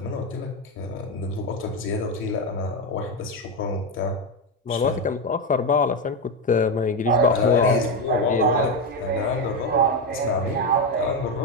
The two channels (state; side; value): normal; both; correlation 0.10